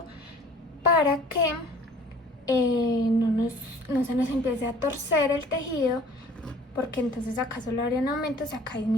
para que no se nos empiece a torcer el tejido, porque entonces acá solo habrían aumentos y acá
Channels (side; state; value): both; normal; correlation 0.51